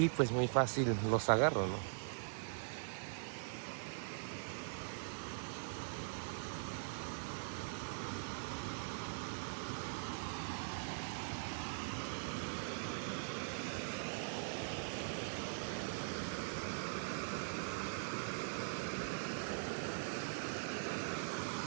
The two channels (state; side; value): silent; left; digital silence